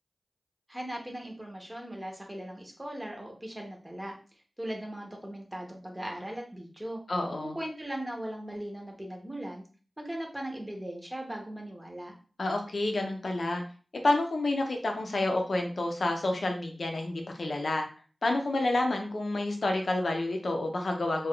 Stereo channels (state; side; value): normal; both; correlation 0.96